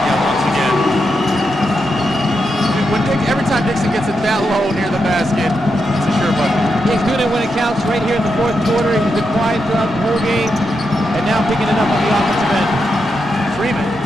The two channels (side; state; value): both; normal; correlation 0.85